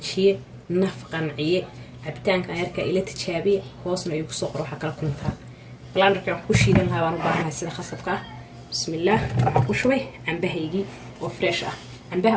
naf qanciye cabitaanka yarka ila tijaabiye hoosna ay ku soo qoro waxa kala kuntaa blanderka wax ku shiidan lahaa waan u baahanahay sida khasabka bismillaah waxa ku shubay cambahaygii وفريش عنبها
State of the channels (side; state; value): both; identical; correlation 1.00